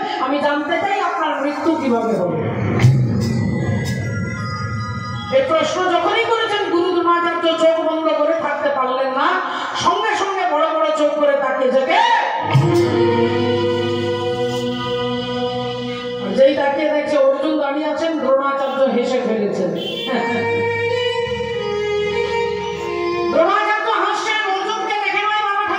আমি জানতে চাই আপনার মৃত্যু কিভাবে হবে। এই প্রশ্ন যখনই করেছেন গুরু দ্রোণাচার্য চোখ বন্ধ করে থাকতে পারলেন না, সঙ্গে সঙ্গে বড় বড় চোখ করে তাকিয়ে থেকে যেই তাকিয়ে দেখছে অর্জুন দাঁড়িয়ে আছেন, দ্রোণাচার্য হেসে ফেলেছেন। দ্রোণাচার্য হাসছেন, অর্জুনকে দেখে নয় বাবা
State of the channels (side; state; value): both; identical; correlation 1.00